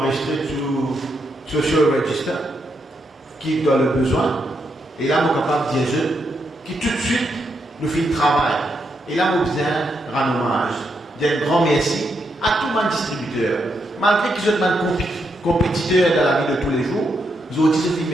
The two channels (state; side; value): normal; both; correlation 0.80